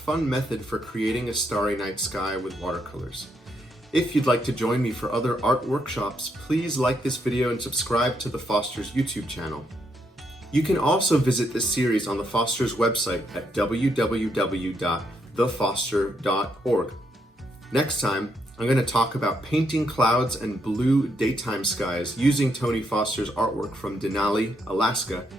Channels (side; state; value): both; normal; correlation 0.77